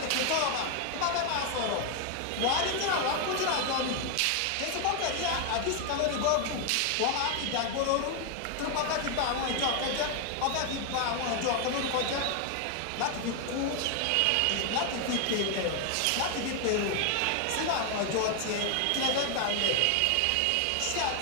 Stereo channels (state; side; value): different; both; correlation 0.01